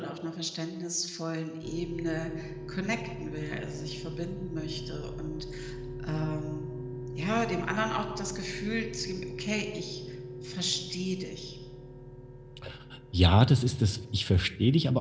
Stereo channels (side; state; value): both; identical; correlation 1.00